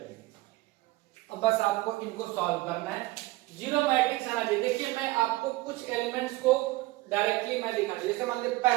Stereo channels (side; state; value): left; quieter; 20.1 dB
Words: अब बस आपको इनको सॉल्व करना है, जीरो मैट्रिक्स आना चाहिए। देखिए मैं आपको कुछ एलिमेंट्स को डायरेक्टली मैं दिखा, जैसे मान लीजिए